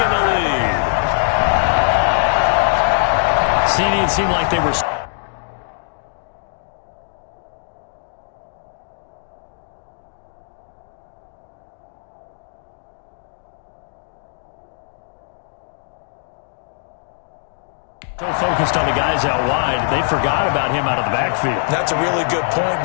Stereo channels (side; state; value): right; silent; digital silence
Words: the lead. It seemed like they were... so focused on the guys out wide, they forgot about him out of the backfield. That's a really good point